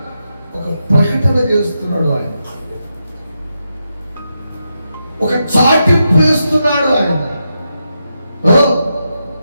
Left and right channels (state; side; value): inverted; both; correlation -0.86